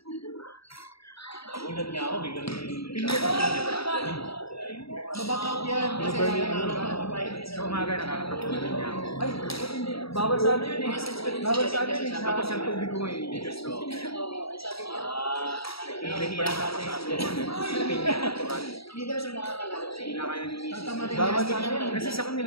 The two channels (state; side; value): late; right; 0.76 ms